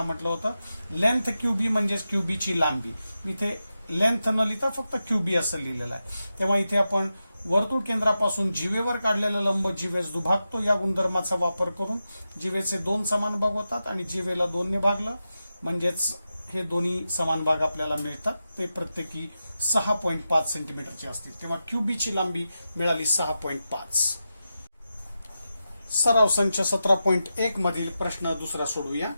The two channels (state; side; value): inverted; both; correlation -0.90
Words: म्हटलं होतं. लेंथ QB म्हणजेच QB ची लांबी. इथे लेंथ न लिहिता फक्त QB असं लिहिलेलं आहे. तेव्हा इथे आपण वर्तुळ केंद्रापासून जीवेवर काढलेला लंब जीवेस दुभागतो या गुणधर्माचा वापर करून जीवेचे 2 समान भाग होतात आणि जीवेला 2 ने भागलं म्हणजेच हे दोन्ही समान भाग आपल्याला मिळतात. ते प्रत्येकी 6.5 सेंटीमीटरचे असतील. तेव्हा QB ची लांबी मिळाली 6.5. सराव संच 17.1 मधील प्रश्न दुसरा सोडवूया.